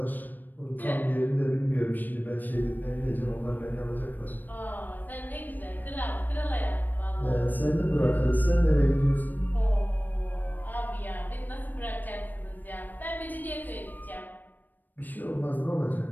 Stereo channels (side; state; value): right; late; 0.088 ms